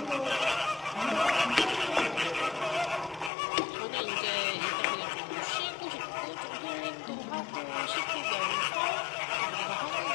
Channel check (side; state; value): right; drops out; at 3.3 s